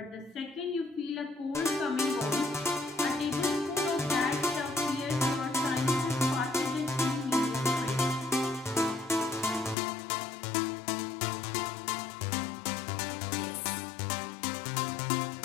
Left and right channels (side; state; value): right; drops out; at 9.8 s